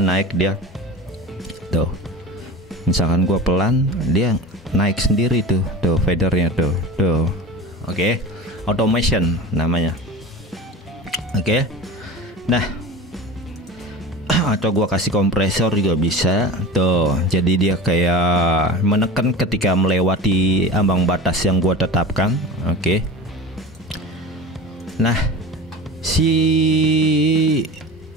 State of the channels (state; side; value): normal; both; correlation 0.32